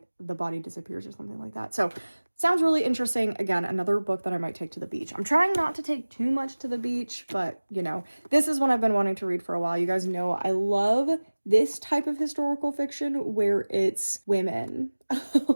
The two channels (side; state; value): both; inverted; correlation -1.00